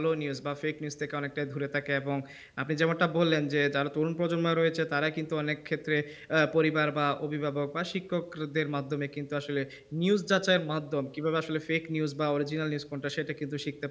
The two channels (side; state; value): both; identical; correlation 1.00